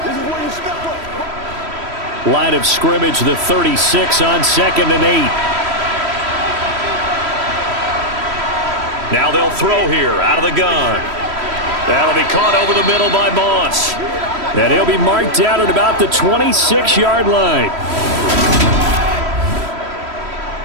Line of scrimmage, the 36 on 2nd and 8. Now they'll throw here out of the gun. That'll be caught over the middle by Moss. And he'll be marked out at about the 26-yard line.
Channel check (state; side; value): late; left; 3.1 ms